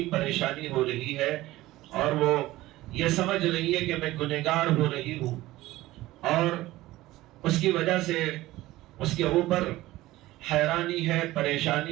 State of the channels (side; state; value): left; quieter; 17.2 dB